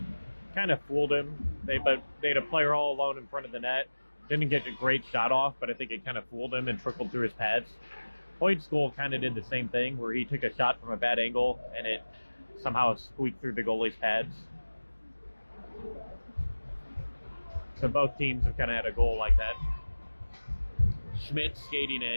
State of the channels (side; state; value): both; inverted; correlation -1.00